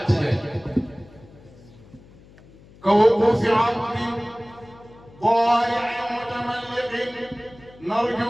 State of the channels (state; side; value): noise; left; hum, 24 dB below the sound